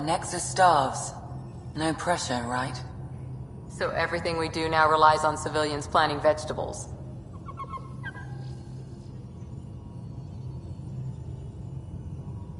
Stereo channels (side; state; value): both; identical; correlation 1.00